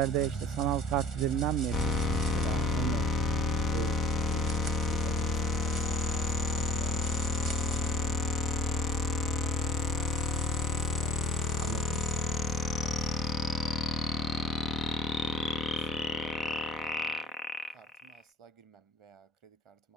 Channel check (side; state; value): both; normal; correlation 0.45